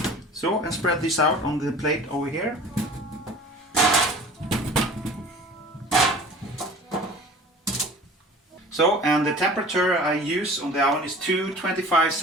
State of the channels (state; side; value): normal; both; correlation 0.42